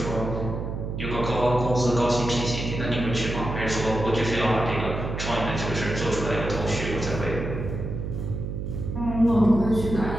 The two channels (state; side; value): noise; right; hum, 5 dB below the sound